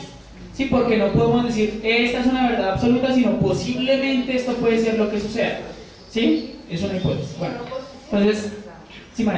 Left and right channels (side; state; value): both; identical; correlation 1.00